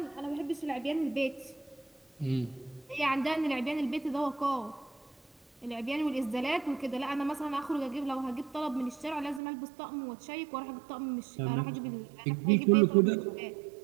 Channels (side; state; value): left; drops out; at 9.4 s